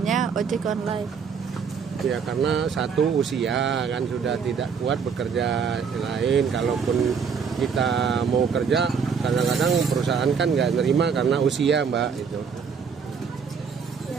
ojek online? Ya karena satu usia kan sudah tidak kuat bekerja lain. Kalaupun kita mau kerja, kadang-kadang perusahaan kan nggak nerima karena usia, Mbak. Itu.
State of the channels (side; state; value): left; quieter; 6.2 dB